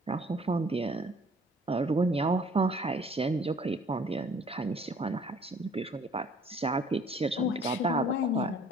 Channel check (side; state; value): both; normal; correlation 0.55